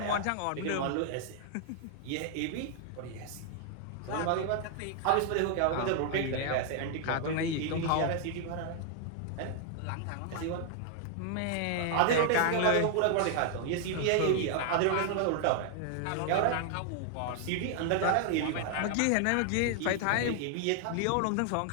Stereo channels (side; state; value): both; different; correlation 0.00